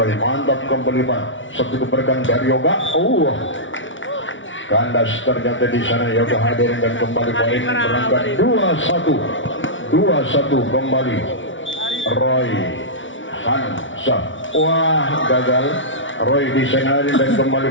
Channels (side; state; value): right; late; 0.56 ms